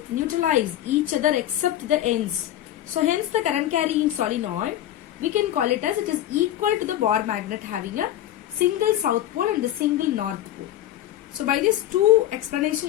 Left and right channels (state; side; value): quieter; right; 12.7 dB